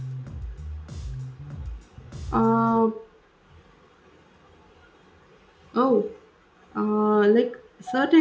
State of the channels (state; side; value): identical; both; correlation 1.00